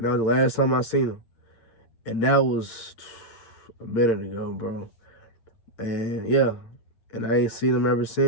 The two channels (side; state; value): right; late; 8.8 ms